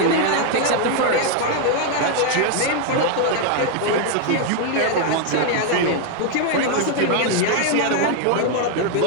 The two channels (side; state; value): both; different; correlation 0.00